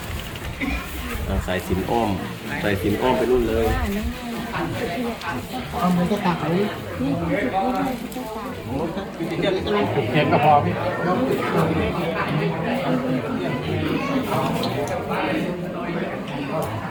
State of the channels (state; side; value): identical; both; correlation 1.00